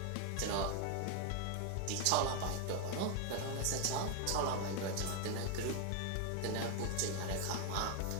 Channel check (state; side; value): different; both; correlation 0.01